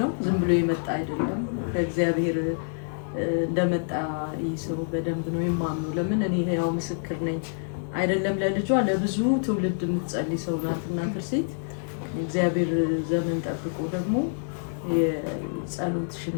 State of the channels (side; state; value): right; silent; 58 dB below the other